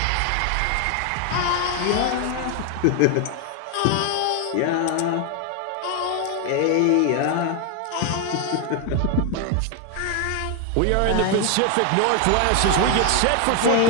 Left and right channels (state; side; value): different; both; correlation 0.01